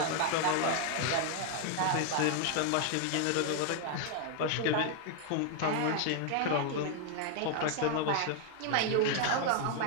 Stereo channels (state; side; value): different; both; correlation 0.00